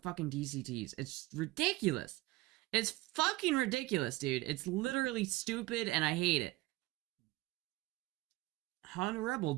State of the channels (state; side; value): quieter; left; 19.4 dB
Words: fucking DCTs. It's ridiculous. It's fucking ridiculous, dude. It's literally stupid and I hate it. Honda Rebel